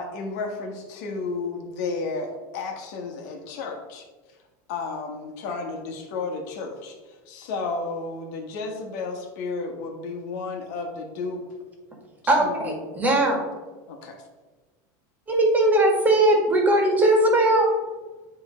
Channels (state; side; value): normal; both; correlation 0.25